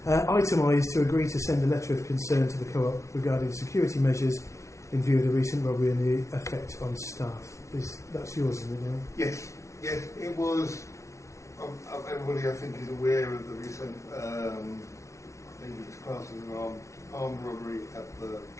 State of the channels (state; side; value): late; right; 0.14 ms